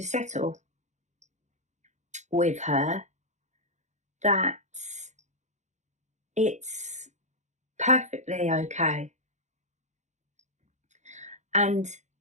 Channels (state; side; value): late; left; 0.34 ms